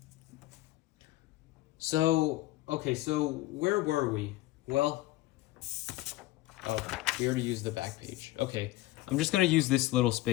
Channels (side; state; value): right; quieter; 17.7 dB